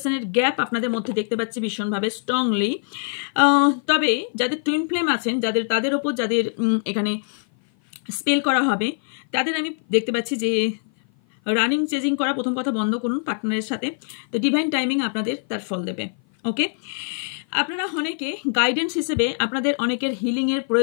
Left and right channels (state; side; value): silent; right; 56 dB below the other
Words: গ্যাপ আপনাদের মধ্যে দেখতে পাচ্ছি ভীষণভাবে স্ট্রংলি। তবে যাদের টুইন ফ্লেম আছেন, তাদের ওপর যাদের এখানে স্পেল করা হবে, তাদের আমি দেখতে পাচ্ছি যে রানিং চেজিং করা প্রথম কথা বন্ধ করুন পার্টনারের সাথে, তো ডিভাইন টাইমিং আপনাদের তার ফল দেবে। ওকে, আপনারা অনেকে গাইডেন্স হিসেবে আপনাদের অনেকের হিলিংয়ের